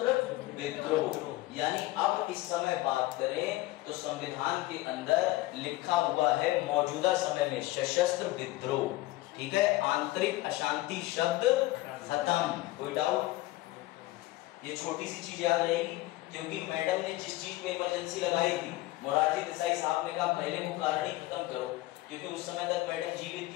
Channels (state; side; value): quieter; right; 18.2 dB